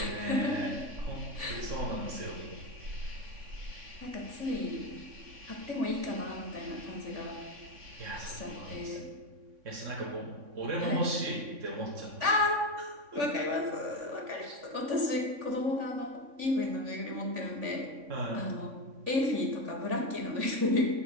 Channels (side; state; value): left; late; 3.4 ms